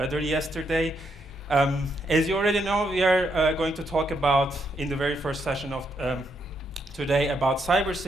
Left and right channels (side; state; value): left; noise; hum, 19 dB below the sound